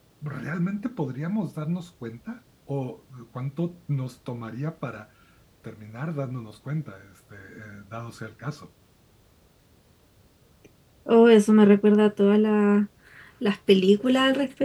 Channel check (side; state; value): both; identical; correlation 1.00